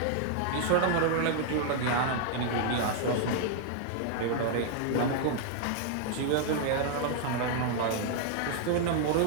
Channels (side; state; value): both; different; correlation 0.00